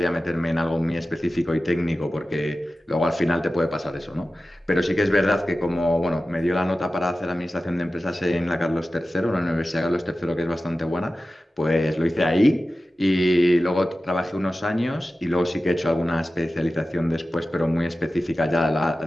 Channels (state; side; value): normal; both; correlation 0.95